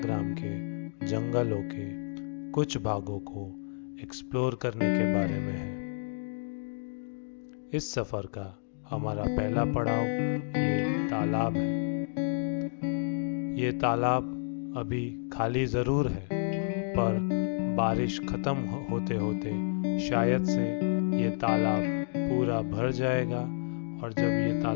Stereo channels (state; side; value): silent; right; digital silence